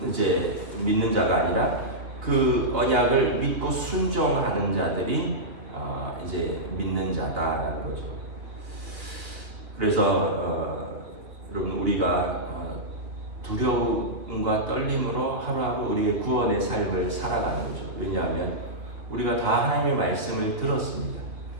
이제 믿는 자가 아니라 그 언약을 믿고 순종하는 자들이 이제 믿는 자다라는 거죠. 그래서 여러분 우리가 두려움과 떨림으로 하루하루 우리의 구원의 삶을 살아가는 거죠. 왜냐하면 우리가 다 하나님의 말씀을 들었습니다.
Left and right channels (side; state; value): left; late; 2.6 ms